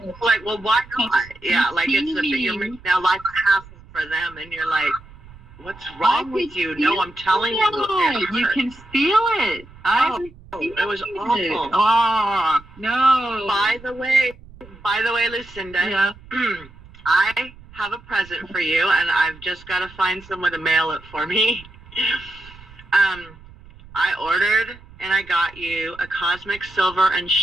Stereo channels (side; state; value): right; noise; rumble, 21 dB below the sound